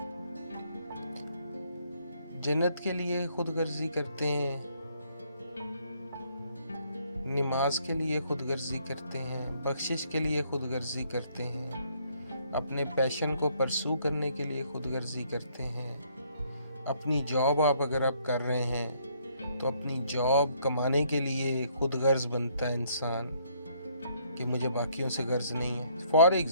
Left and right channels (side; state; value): both; inverted; correlation -0.67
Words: जन्नत के लिए खुदगर्जी करते हैं, नमाज के लिए खुदगर्जी करते हैं, बख्शिश के लिए खुदगर्जी करते हैं, अपने पैशन को परसू करने के लिए खुदगर्जी करते हैं। अपनी जॉब अगर आप कर रहे हैं तो अपनी जॉब कमाने के लिए खुदगर्ज बनता है इंसान कि मुझे बाकियों से गर्ज नहीं है। फॉर